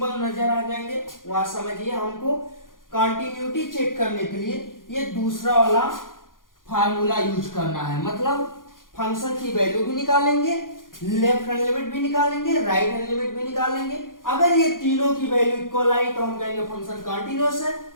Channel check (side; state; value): right; late; 0.90 ms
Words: नजर आ जाएंगे वहां समझिए हमको कंटिन्यूटी चेक करने के लिए ये दूसरा वाला फार्मूला यूज करना है। मतलब फंक्शन की वैल्यू भी निकालेंगे, लेफ्ट हैंड लिमिट भी निकालेंगे, राइट हैंड लिमिट भी निकालेंगे। अगर ये तीनों की वैल्यू इक्वल आई तो हम कहेंगे फंक्शन कंटिन्यूअस है,